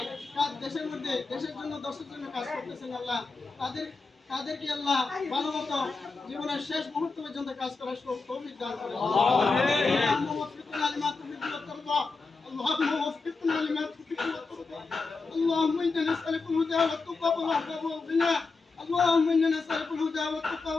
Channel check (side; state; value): right; quieter; 4.1 dB